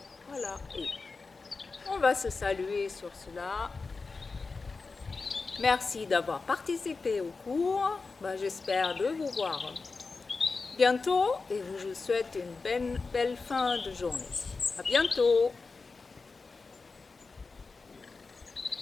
Voilà, et on va se saluer sur cela. Merci d'avoir participé au cours. J'espère de vous voir bientôt et je vous souhaite une belle fin de journée. À bientôt.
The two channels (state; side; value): quieter; right; 4.2 dB